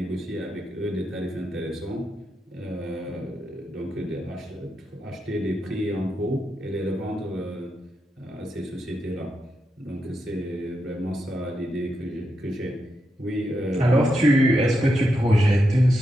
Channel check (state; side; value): normal; both; correlation 0.85